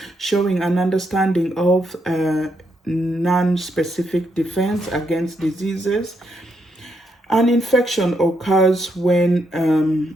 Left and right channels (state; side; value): normal; both; correlation 0.78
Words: showing an understanding of non-specific defense against diseases. An infection occurs